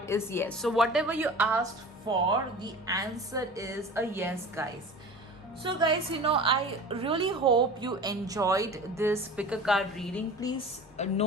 is yes. So whatever you asked for, the answer is a yes, guys. So guys, I really hope you enjoyed this pick a card reading. Please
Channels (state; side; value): normal; both; correlation 0.37